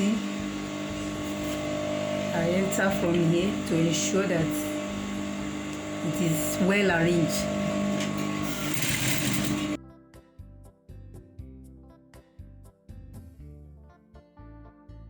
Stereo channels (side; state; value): both; identical; correlation 1.00